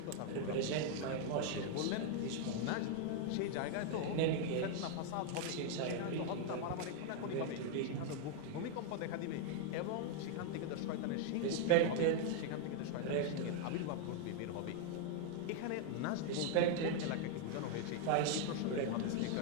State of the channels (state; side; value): different; both; correlation 0.00